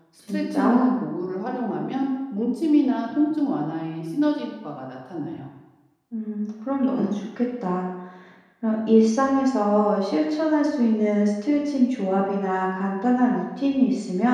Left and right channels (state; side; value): identical; both; correlation 1.00